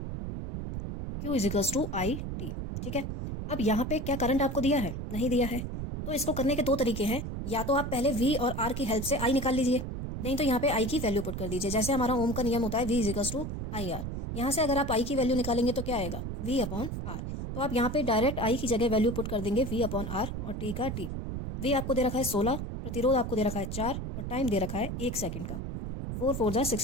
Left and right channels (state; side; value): noise; right; rumble, 5 dB below the sound